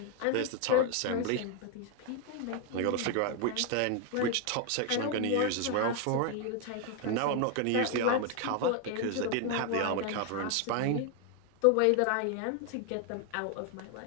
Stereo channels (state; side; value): different; both; correlation 0.01